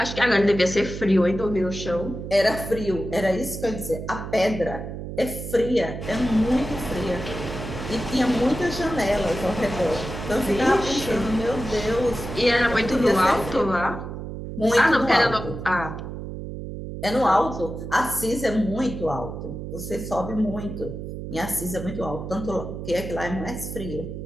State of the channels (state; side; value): noise; right; hum, 8 dB below the sound